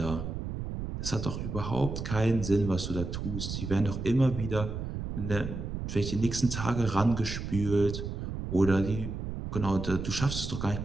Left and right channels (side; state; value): right; noise; rumble, 5 dB below the sound